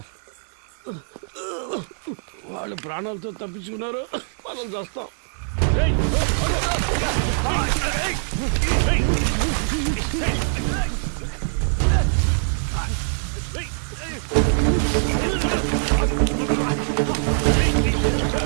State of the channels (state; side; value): silent; left; 63 dB below the other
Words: వాళ్ళు ప్రాణాలతో తప్పించుకున్నారు, మనం చేస్తాం.